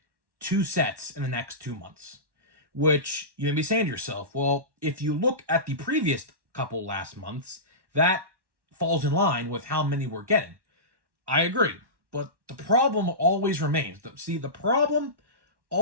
2 sets in the next 2 months, which you may be saying to yourself, well, if you look at the previous couple last months, that falls in line with how many we're getting. I agree, but the problem always remains. The problem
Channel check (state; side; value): late; left; 1.1 ms